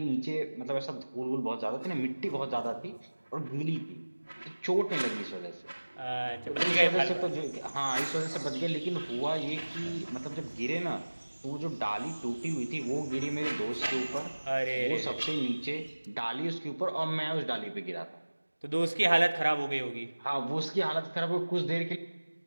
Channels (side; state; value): both; inverted; correlation -1.00